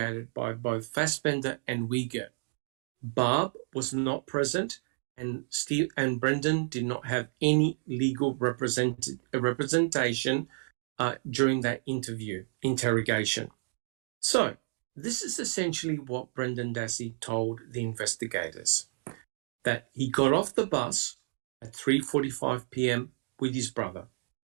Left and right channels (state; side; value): silent; left; digital silence